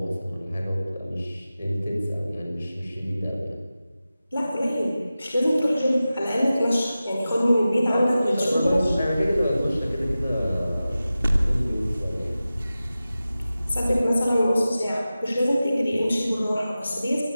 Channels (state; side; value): inverted; both; correlation -0.95